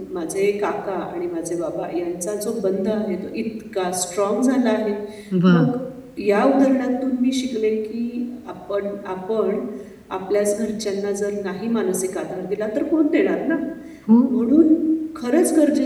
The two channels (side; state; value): both; identical; correlation 1.00